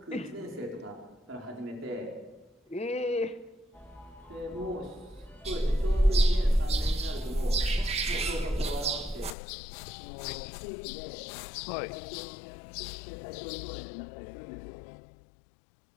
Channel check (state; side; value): drops out; right; at 9.3 s